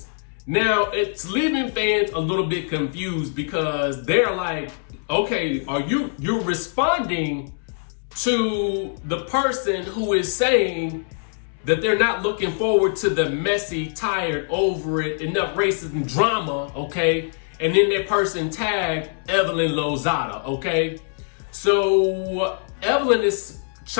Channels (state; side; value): silent; right; 63 dB below the other